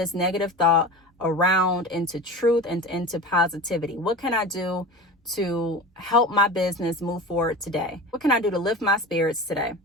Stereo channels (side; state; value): both; normal; correlation 0.32